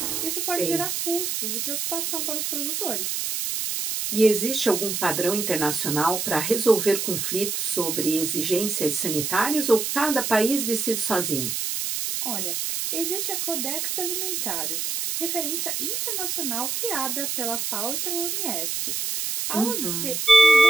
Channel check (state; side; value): noise; right; hiss, 2 dB below the sound